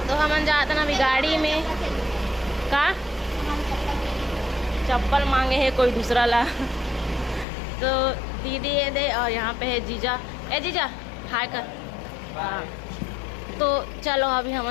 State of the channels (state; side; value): drops out; right; at 7.5 s